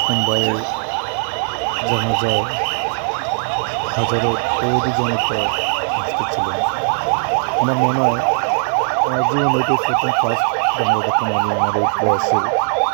ভাইয়ের জানাজায় হাজারো তৌহিদি জনতা উপস্থিত ছিলেন। আমার মনে হয় আমার জীবনে এটাই প্রথম ফার্স্ট জানাজা দেখলাম আমি আমার এই বয়সে,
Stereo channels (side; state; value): left; silent; 67 dB below the other